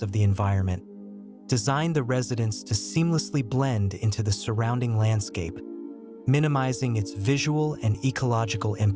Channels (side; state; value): both; identical; correlation 1.00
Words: of the environment, designed the residence to seamlessly blend into the surrounding landscape, minimizing its visual and ecological